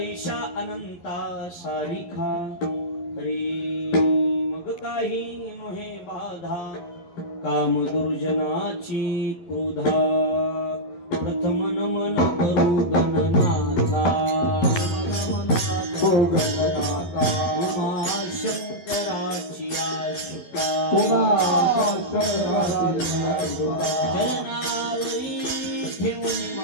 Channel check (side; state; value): right; late; 11 ms